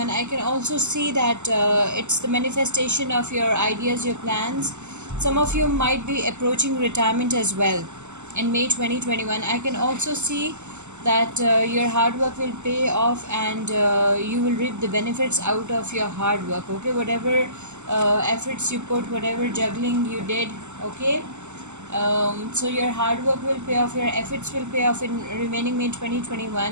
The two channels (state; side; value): late; left; 0.83 ms